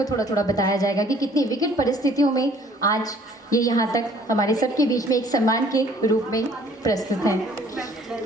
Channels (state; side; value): normal; both; correlation 0.57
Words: थोड़ा थोड़ा बताया जाएगा कि कितनी विकट परिस्थितियों में आज ये यहाँ तक हमारे सबके बीच में एक सम्मान के रूप में प्रस्तुत हैं,